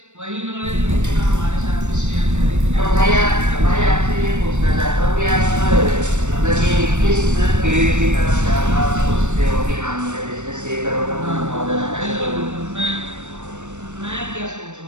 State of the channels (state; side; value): late; left; 0.84 ms